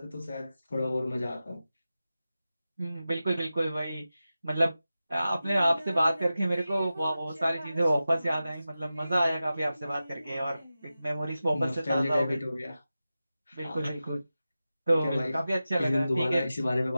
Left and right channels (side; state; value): both; inverted; correlation -0.93